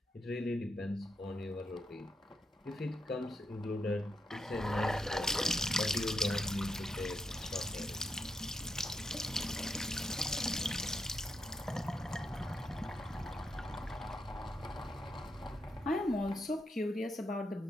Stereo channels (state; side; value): normal; both; correlation 0.81